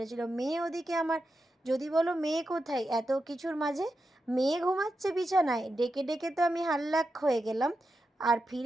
মেয়ে ওদিকে আমার, যদি বলো মেয়ে কোথায় এত কিছুর মাঝে, মেয়ে ঘুমাচ্ছে বিছানায়, ডেকে ডেকে তো আমি হাল্লাক হয়ে গেলাম। আর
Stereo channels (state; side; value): normal; both; correlation 0.88